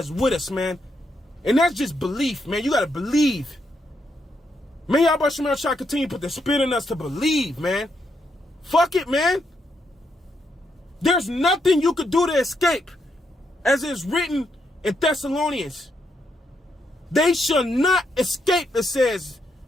with us, man. And that's just belief, man. You got to believe. May Yahweh Shem Shai continue to put the spirit in us to believe, man. Fuck it, man. There's nothing you could do to escape. As it's written in Thessalonians. They shall not escape, it says.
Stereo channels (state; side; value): normal; both; correlation 0.79